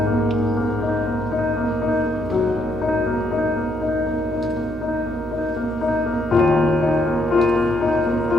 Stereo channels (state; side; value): normal; both; correlation 0.74